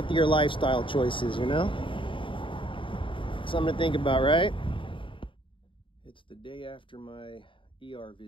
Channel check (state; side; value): late; right; 0.25 ms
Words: lifestyle choices, you know? Something to think about, right? It's the day after my ER